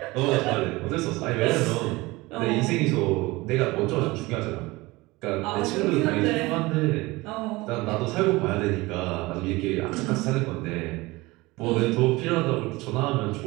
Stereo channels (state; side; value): quieter; left; 21.6 dB